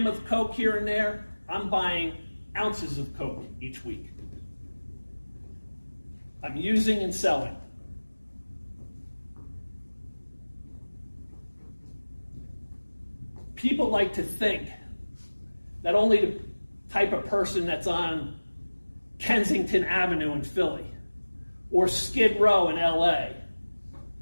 of coke here and there, I'm buying ounces of coke each week. I'm using and selling. People like to think that only the type of person that's on Kensington Avenue in Philly, or Skid Row in LA,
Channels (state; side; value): inverted; both; correlation -1.00